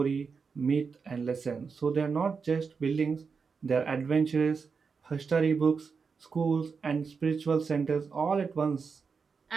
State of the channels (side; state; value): left; quieter; 5.3 dB